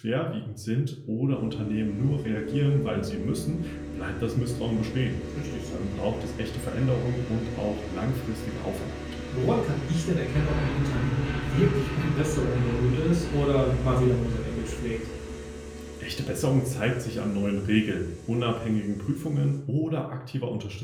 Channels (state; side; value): identical; both; correlation 1.00